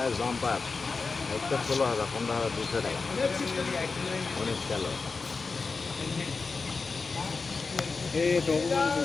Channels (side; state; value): right; quieter; 4.3 dB